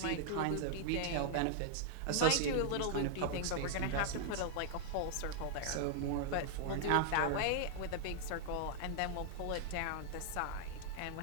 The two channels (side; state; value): both; different; correlation 0.00